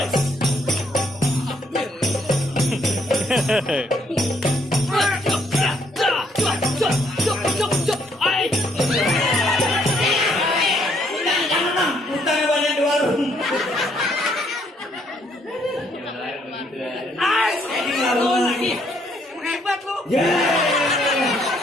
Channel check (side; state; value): both; normal; correlation 0.69